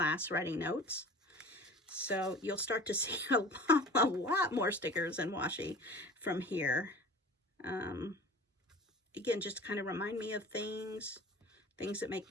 writing notes. So you'll start to see a lot more stickers and washi from here. Again, just to kind of remind me of things that make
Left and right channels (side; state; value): both; normal; correlation 0.40